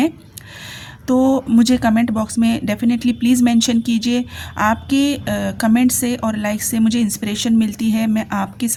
तो मुझे कमेंट बॉक्स में डेफिनेटली प्लीज़ मेंशन कीजिए। आपके कमेंट से और लाइक से मुझे इंस्पिरेशन मिलती है, मैं आपके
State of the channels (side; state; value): both; identical; correlation 1.00